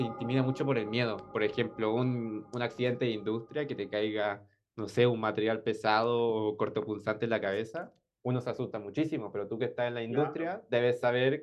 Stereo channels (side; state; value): both; identical; correlation 1.00